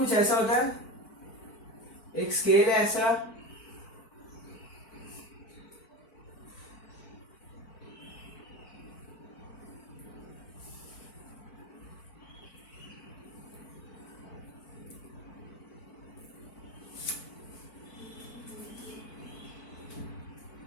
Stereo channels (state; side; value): late; right; 4.5 ms